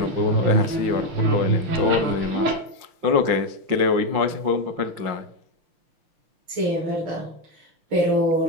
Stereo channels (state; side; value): late; left; 5.7 ms